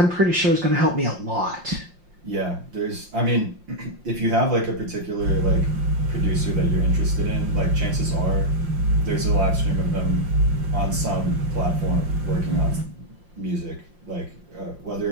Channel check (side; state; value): left; late; 5.7 ms